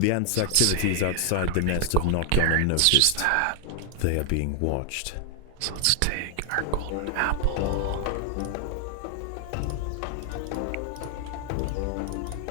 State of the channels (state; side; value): different; both; correlation 0.00